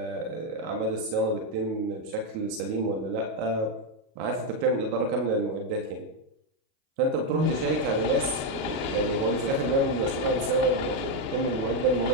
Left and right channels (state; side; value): late; left; 37 ms